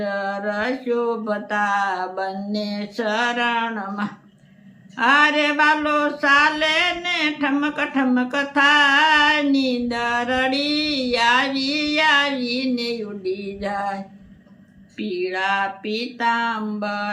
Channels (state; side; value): identical; both; correlation 1.00